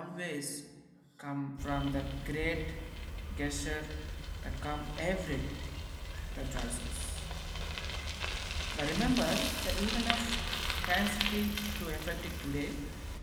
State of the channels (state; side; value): identical; both; correlation 1.00